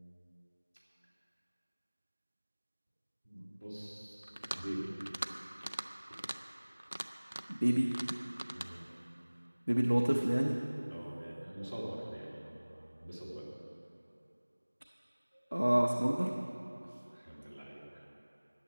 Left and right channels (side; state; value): both; inverted; correlation -1.00